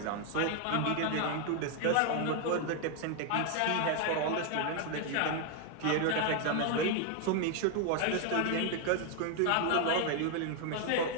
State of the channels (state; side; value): different; both; correlation 0.01